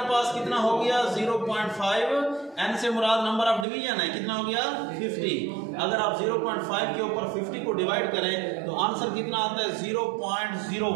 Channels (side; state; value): left; drops out; at 3.7 s